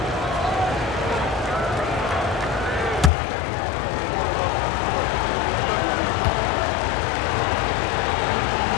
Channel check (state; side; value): drops out; right; at 3.1 s